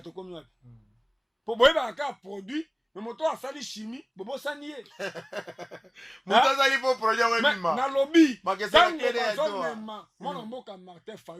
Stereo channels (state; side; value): identical; both; correlation 1.00